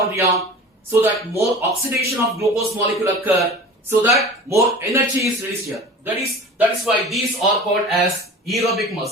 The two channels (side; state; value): both; normal; correlation 0.38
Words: so that more oxidation of glucose molecule occur, so that more energy is released here. That is why these are called as aerobic